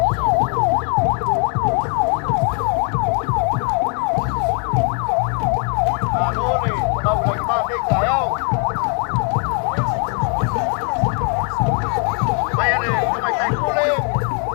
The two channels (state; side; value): quieter; right; 36.0 dB